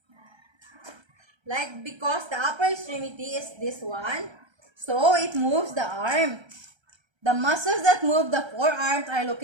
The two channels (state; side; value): late; left; 1.3 ms